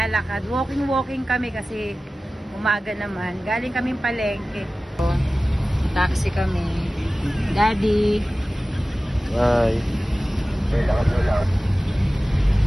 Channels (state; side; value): normal; both; correlation 0.96